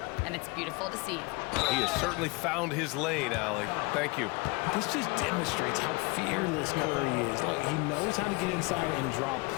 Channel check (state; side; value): quieter; right; 26.5 dB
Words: and it's beautiful to see. He has certainly found his lane, Allie. Thank you. This just demonstrates how fearless Curry is. Look, he knows how to get inside and draw